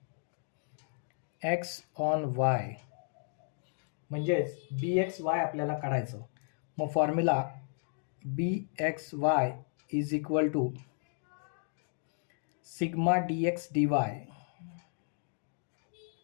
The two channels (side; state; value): right; silent; digital silence